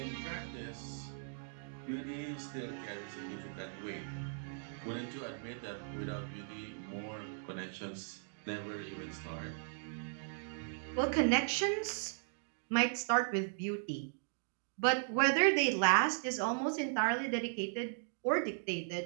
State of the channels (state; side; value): silent; left; digital silence